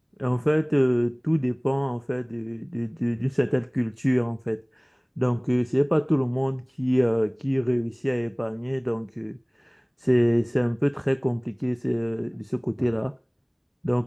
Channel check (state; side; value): identical; both; correlation 1.00